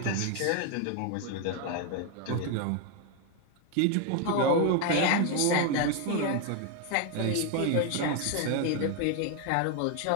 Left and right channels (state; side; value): different; both; correlation 0.01